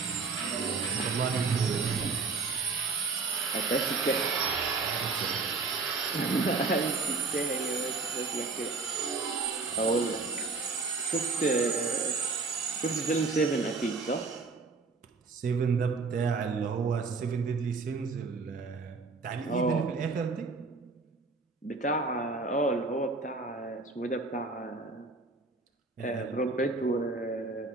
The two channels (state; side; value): quieter; left; 4.1 dB